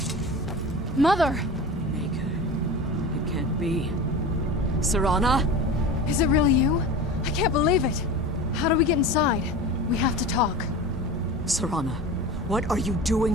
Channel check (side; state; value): both; normal; correlation 0.31